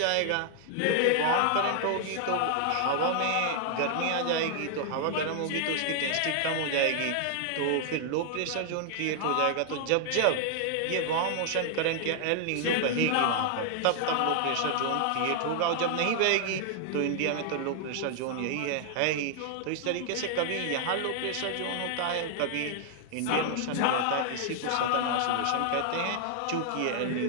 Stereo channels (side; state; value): both; different; correlation 0.00